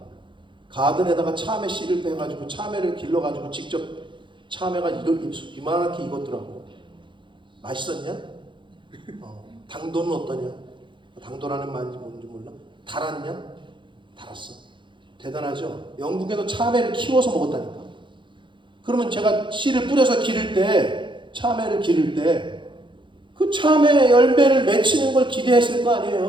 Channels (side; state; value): left; late; 0.23 ms